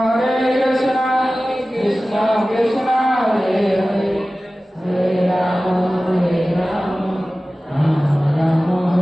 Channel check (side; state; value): both; normal; correlation 0.97